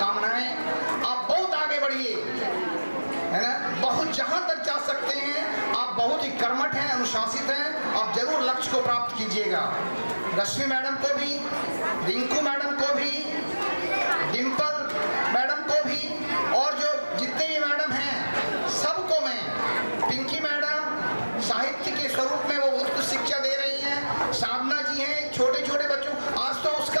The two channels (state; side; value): inverted; both; correlation -1.00